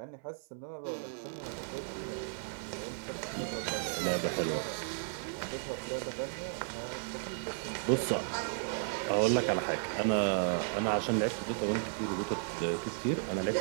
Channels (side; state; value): left; silent; 55 dB below the other